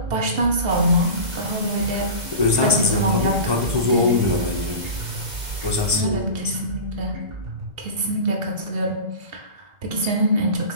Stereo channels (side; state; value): left; late; 2.0 ms